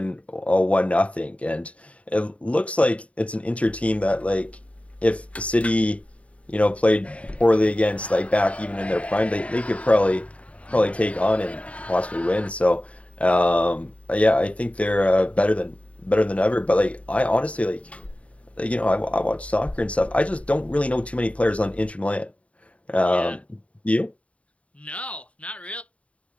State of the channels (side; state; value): right; late; 0.065 ms